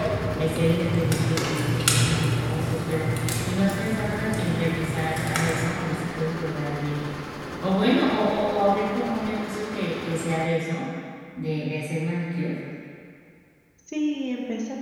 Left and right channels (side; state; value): both; identical; correlation 1.00